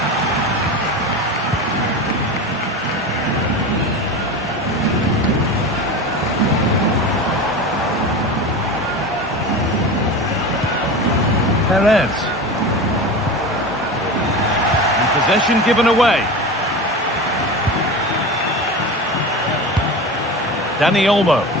Perez. And possession given away. Dani Olmo.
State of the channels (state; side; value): normal; both; correlation 0.28